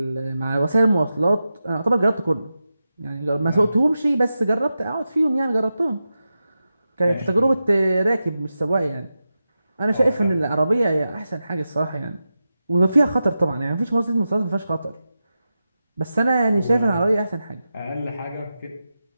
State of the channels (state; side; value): inverted; both; correlation -0.91